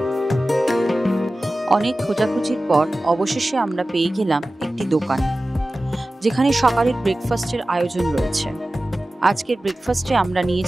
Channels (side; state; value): both; normal; correlation 0.96